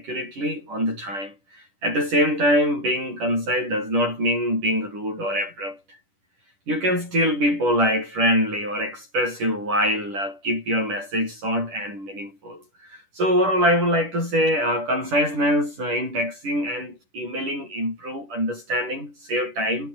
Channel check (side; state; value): left; late; 10 ms